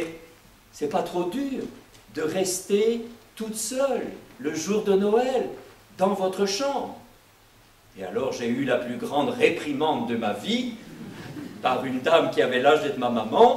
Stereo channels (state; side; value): identical; both; correlation 1.00